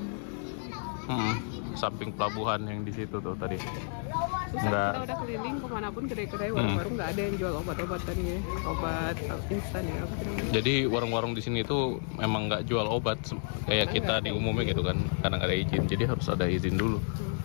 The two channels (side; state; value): right; silent; 57 dB below the other